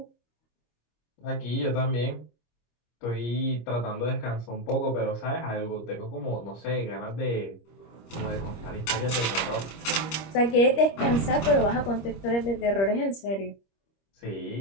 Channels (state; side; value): late; right; 25 ms